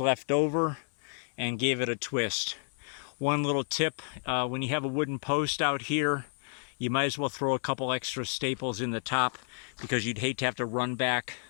left over and gave it a twist. One little tip, when you have a wooden post out here, you might as well throw a couple extra staples in the top, because you'd hate to have to run back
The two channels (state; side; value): silent; right; digital silence